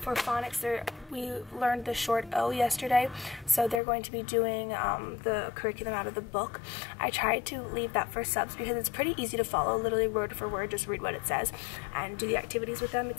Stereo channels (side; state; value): right; drops out; at 3.8 s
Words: For phonics, we learned the short O yesterday, so they're going to be doing the curriculum out of the book. I tried to leave that for subs because it's pretty easy to follow, literally word for word, just read what it says and do the activities with them.